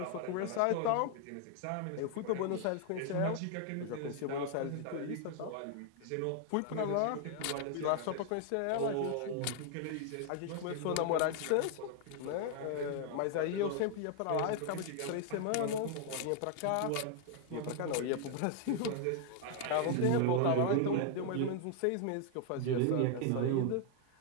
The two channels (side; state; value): both; different; correlation 0.00